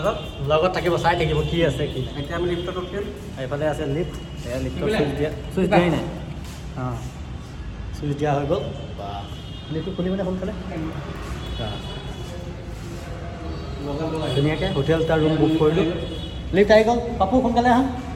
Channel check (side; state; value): both; identical; correlation 1.00